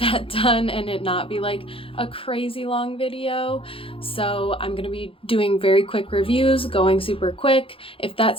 that done and it not be like a crazy long video. So I'm gonna be doing very quick reviews, going super quick. If that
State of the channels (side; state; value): right; late; 0.26 ms